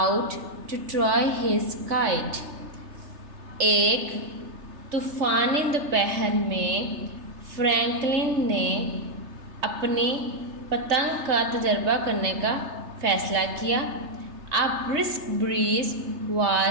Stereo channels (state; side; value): late; left; 3.3 ms